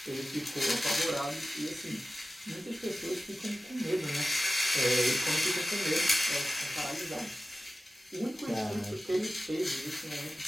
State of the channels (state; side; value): normal; both; correlation 0.95